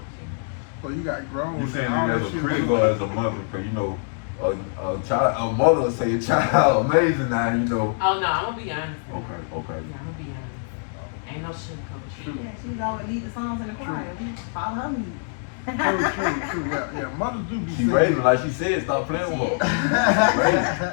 to. So you got grown. You saying All it as that a shit critic was- or as a mother? Because you know, a mother will say a child amazing now. You know. Oh no, I'm gonna be honest. Okay. Yeah, I'm gonna be honest. Ain't no sugarcoat shit. Yeah, she's always lead the songs in the choir. We follow her lead. True. Yeah. Mothers do be She saying. raising like she said. Stop playing with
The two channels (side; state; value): right; silent; digital silence